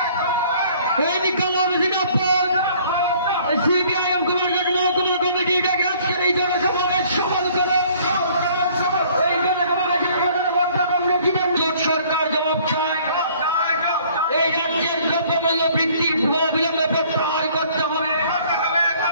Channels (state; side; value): inverted; both; correlation -0.57